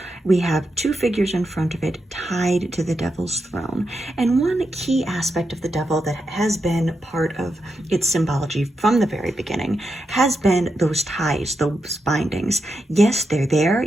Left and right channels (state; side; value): normal; both; correlation 0.86